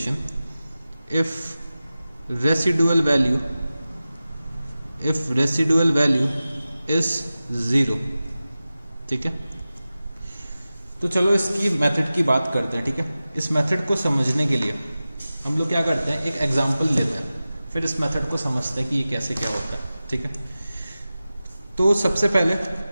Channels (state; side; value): inverted; both; correlation -0.95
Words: if residual value is zero, ठीक है। तो चलो इसकी method की बात करते हैं, ठीक है। इस मेथड को समझने के लिए हम लोग क्या करते हैं, एक एग्जांपल लेते हैं, फिर इस मेथड को समझते हैं कि ये कैसे क्या होता है, ठीक है। तो सबसे पहले